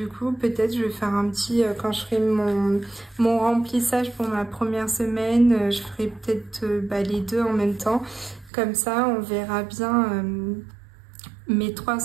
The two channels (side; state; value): left; drops out; at 8.5 s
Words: coup, peut-être je vais faire un petit, quand je ferai mon remplissage pour ma première semaine, je ferai peut-être les deux en même temps. Comme ça, on verra bien mes